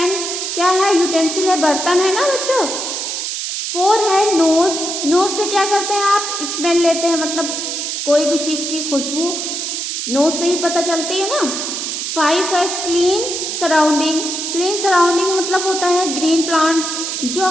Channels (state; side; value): noise; right; hiss, 3 dB below the sound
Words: क्या है? यूटेंसिल है, बर्तन है ना बच्चों। 4 है नोज से क्या करते हैं आप? स्मेल लेते हैं, मतलब कोई भी चीज़ की खुशबू नोज से ही पता चलती है ना। 5 है क्लीन सराउंडिंग मतलब होता है ग्रीन प्लांट, जो